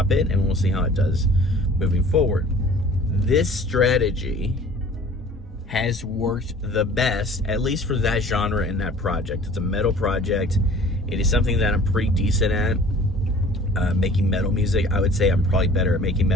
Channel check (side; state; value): both; normal; correlation 0.48